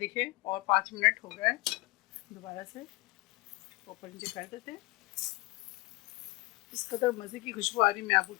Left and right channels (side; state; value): right; quieter; 23.1 dB